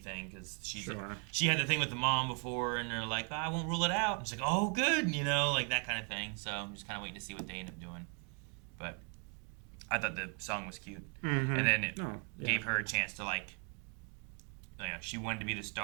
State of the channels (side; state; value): left; quieter; 37.9 dB